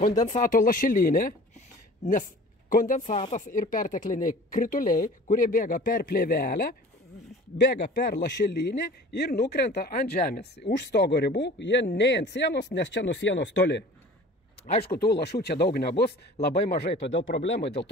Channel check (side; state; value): both; normal; correlation 0.44